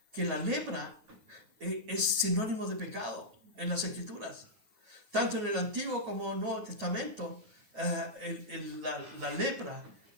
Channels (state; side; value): late; left; 9.0 ms